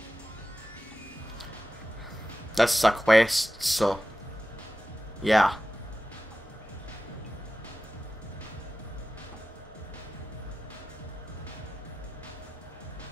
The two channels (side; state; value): both; normal; correlation 0.94